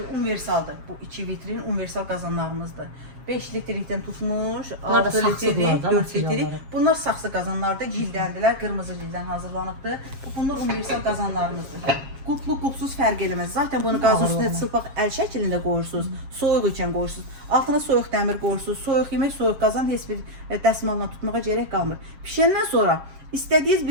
Universaldır. Bu 2 vitrin universal qazanlarımızdır. 5 litrlikdən tutmuş, 6 litrlik, 4 litrlik. Bunlar saxsı qazanlardır, cildəndirlər, qırmızı cildən hazırlanıbdır. Bunlar universal qazanlarımızdır. Qulplu, qulpsuz fərq eləməz. Zaten bunu qazın üstünə çılpaq əl şəklində qoyursunuz, soyuq ikən qoyursunuz. Altına soyuq dəmir qoyursunuz, soyuq yemək, soyuq qazan heç bir dəsmalla tutmağa gərək qalmır. Pişəndən sonra istədiyiniz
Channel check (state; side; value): late; left; 7.3 ms